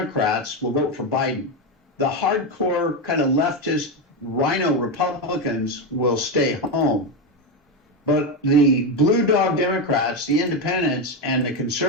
will vote for Biden. The hardcore kind of leftist rhino Republicans will stay home. But the blue dog Democrats, the independents, and the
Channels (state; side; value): normal; both; correlation 0.11